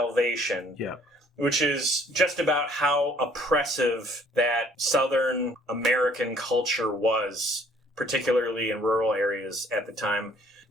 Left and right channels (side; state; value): both; normal; correlation 0.59